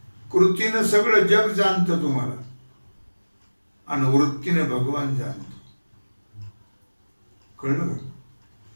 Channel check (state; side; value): inverted; both; correlation -1.00